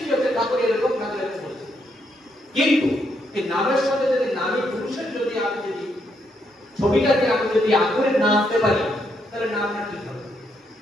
হচ্ছে ঠাকুর এরকম, ঠাকুর এরকম বলছে। কিন্তু এই নামের সাথে যদি নামী পুরুষের যদি আমি যদি ছবিটাকে আমি যদি আগুনে না আনতে পারি তাহলে নামটা ঠিক হবে।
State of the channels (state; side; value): normal; both; correlation 0.77